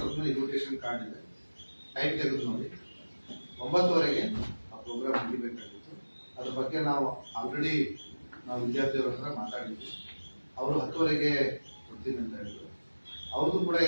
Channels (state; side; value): inverted; both; correlation -1.00